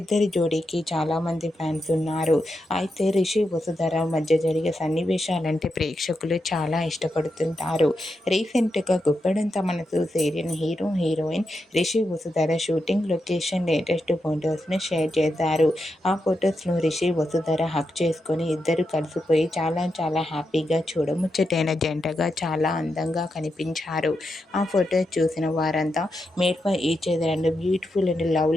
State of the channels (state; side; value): normal; both; correlation 0.86